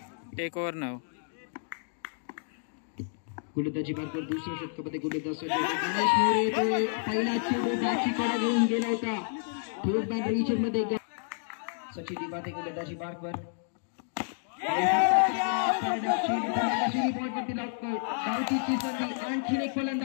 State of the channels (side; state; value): right; silent; digital silence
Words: टेक ओव्हर 9 गोलंदाजी मार्कवर दुसऱ्या षटकामध्ये गोलंदाज गणेश मोरे पहिला चेंडू बॅटची घेऊन गेला होता थोड बॅट रिजन मध्ये सचिन दिवाते गोलंदाजी मार्कवर आणखी एक